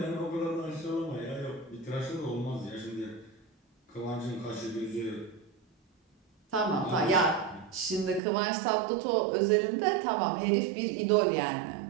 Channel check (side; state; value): left; drops out; at 8.2 s